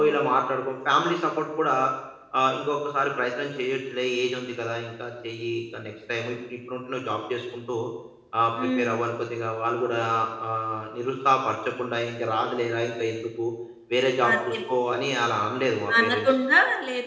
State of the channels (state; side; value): identical; both; correlation 1.00